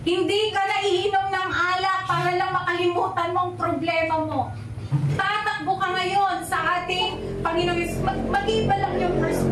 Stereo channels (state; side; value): identical; both; correlation 1.00